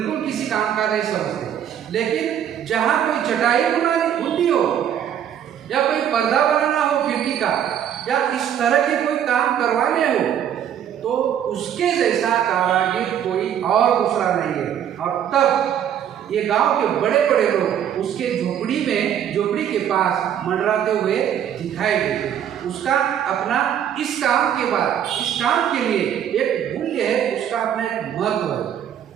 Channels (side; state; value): left; quieter; 9.6 dB